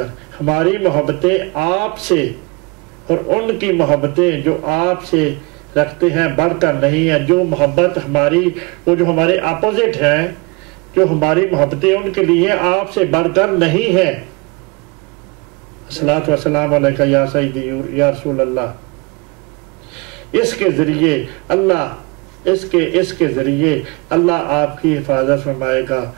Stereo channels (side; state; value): left; quieter; 27.9 dB